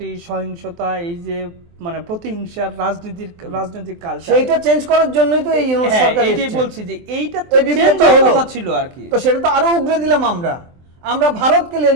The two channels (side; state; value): left; late; 23 ms